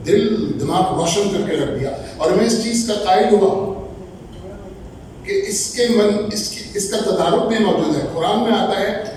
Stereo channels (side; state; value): both; identical; correlation 1.00